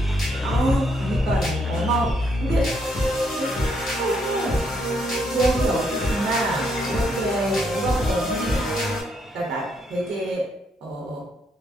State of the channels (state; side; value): normal; both; correlation 0.74